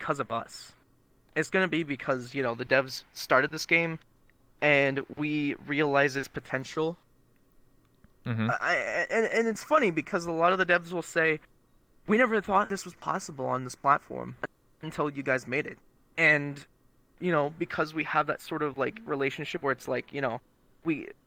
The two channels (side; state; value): both; identical; correlation 1.00